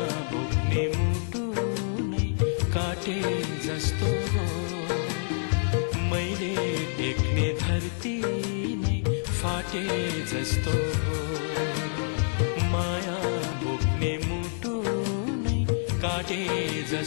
बोक्ने मुटु काटे जस्तो हो, मैले टेक्ने धरती नै फाटे जस्तो हो, माया बोक्ने मुटु नै काटे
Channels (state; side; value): silent; right; digital silence